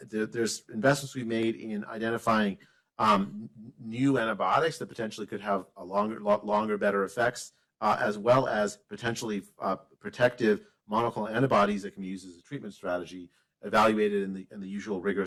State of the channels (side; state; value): both; identical; correlation 1.00